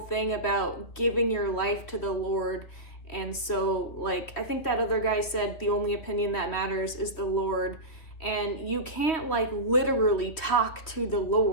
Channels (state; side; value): late; right; 3.4 ms